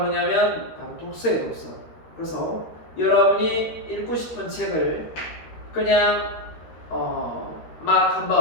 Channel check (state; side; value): late; right; 13 ms